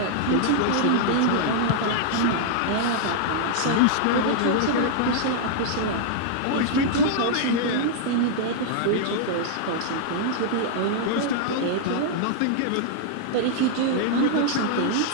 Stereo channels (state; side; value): different; both; correlation -0.01